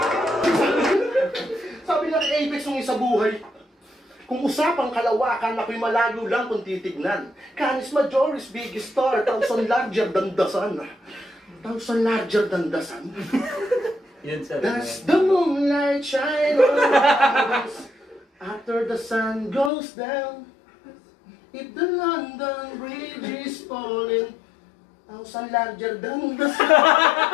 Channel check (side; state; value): right; drops out; at 19.7 s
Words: Sabi niya kay Apex nung isa buhay, kung usapang kalawakan, ako'y malayo lang kung titignan. Canis Majoris, biggest star, thousand larger than the sun. Thousand larger than the sun? Yan sa That's the moonlight shine on us after the sun goes down. If the London Bridge is falling, thousand larger than the sun.